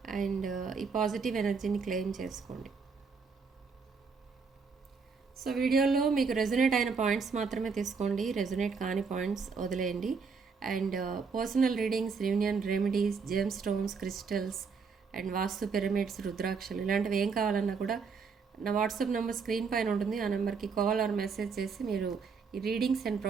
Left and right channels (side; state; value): left; quieter; 5.3 dB